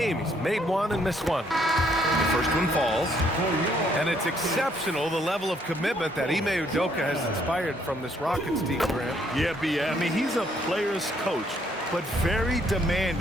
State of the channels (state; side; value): normal; both; correlation 0.68